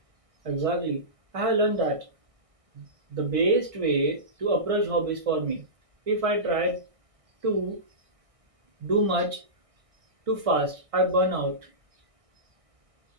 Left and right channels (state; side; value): late; left; 1.6 ms